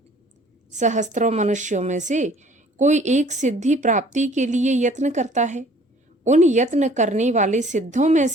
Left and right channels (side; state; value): both; normal; correlation 0.54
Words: सहस्त्रों मनुष्यों में से कोई एक सिद्धि प्राप्ति के लिए यत्न करता है। उन यत्न करने वाले सिद्धों में